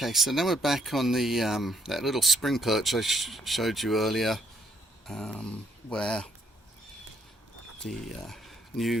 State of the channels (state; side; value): normal; both; correlation 0.68